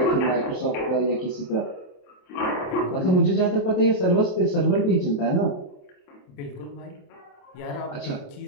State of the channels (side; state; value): right; late; 28 ms